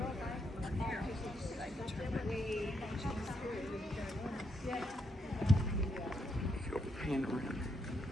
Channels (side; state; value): both; normal; correlation 0.78